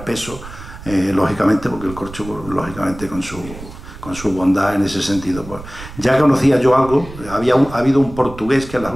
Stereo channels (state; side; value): noise; right; rumble, 14 dB below the sound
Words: peso, lógicamente, porque el corcho, lógicamente, con su bondad en ese sentido. Pues, ya conocía yo algo, ha habido un portugués que en las